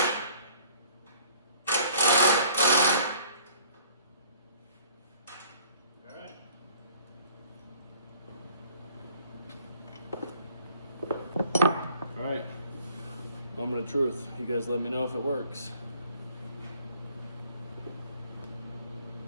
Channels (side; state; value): both; inverted; correlation -0.54